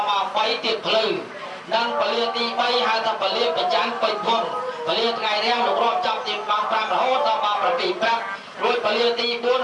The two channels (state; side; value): identical; both; correlation 1.00